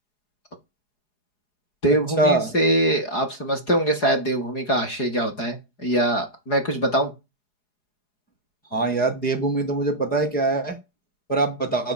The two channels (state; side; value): late; right; 4.8 ms